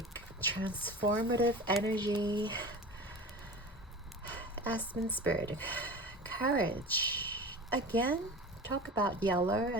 transformative energy. Aspen spirit, courage. Again, talk about yellow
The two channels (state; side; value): normal; both; correlation 0.33